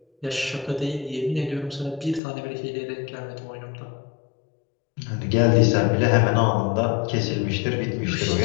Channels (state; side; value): drops out; right; at 2.2 s